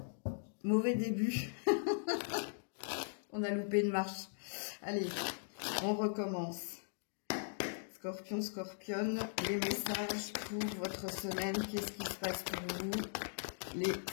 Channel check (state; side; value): silent; right; digital silence